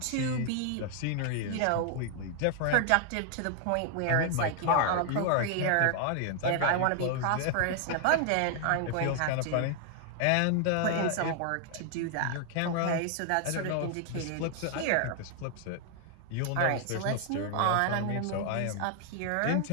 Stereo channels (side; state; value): both; different; correlation 0.00